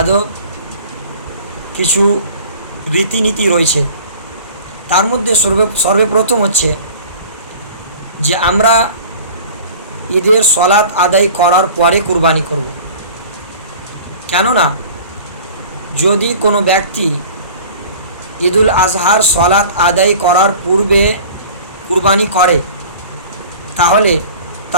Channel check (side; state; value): both; inverted; correlation -0.43